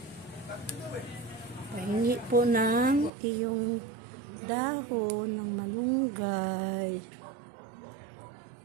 Pahingi po ng iyong dahon ng malunggay.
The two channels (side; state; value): left; drops out; at 3.1 s